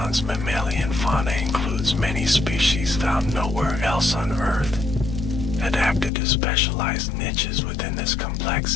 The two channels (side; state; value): right; drops out; at 6.1 s